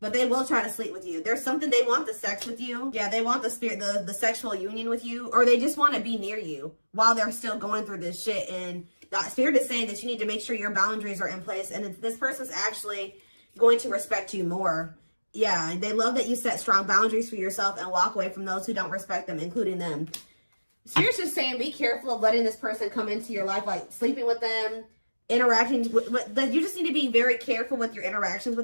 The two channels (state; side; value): inverted; both; correlation -1.00